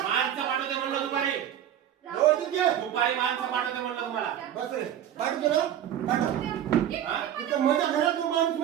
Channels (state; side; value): quieter; left; 10.6 dB